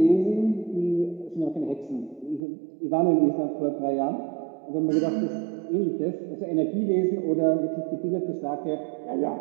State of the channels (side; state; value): left; drops out; at 2.4 s